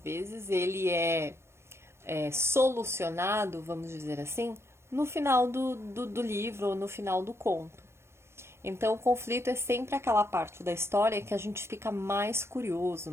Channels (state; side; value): late; left; 0.13 ms